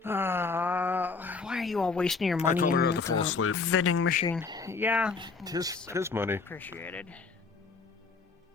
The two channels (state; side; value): quieter; right; 4.6 dB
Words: Why are you all wasting your money told her in not to fall the asleep. vending machine? Yeah. His money. Appreciated.